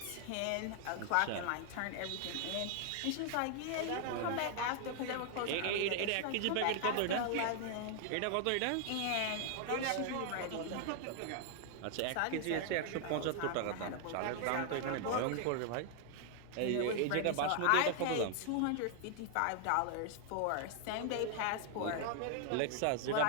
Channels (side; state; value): both; different; correlation 0.00